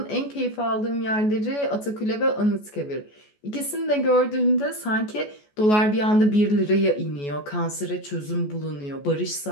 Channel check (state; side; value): late; right; 14 ms